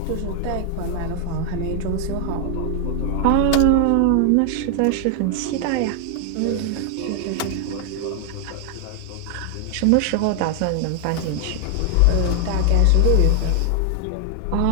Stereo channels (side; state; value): both; different; correlation 0.00